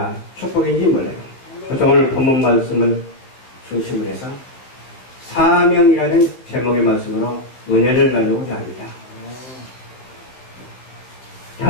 축복인지 몰라요. 그래서 오늘 본문 말씀을 중심으로 해서 사명이라는 제목의 말씀으로 은혜를 나누고자 합니다.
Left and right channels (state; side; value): late; right; 16 ms